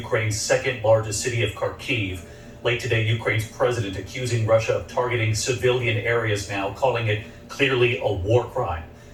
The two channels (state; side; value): identical; both; correlation 1.00